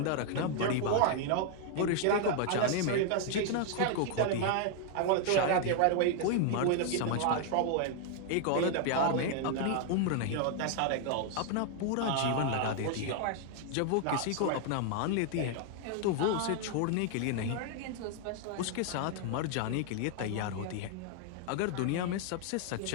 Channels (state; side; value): different; both; correlation 0.00